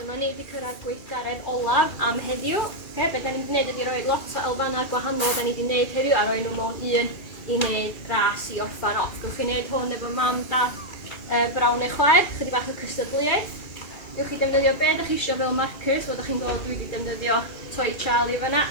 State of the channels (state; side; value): late; right; 2.4 ms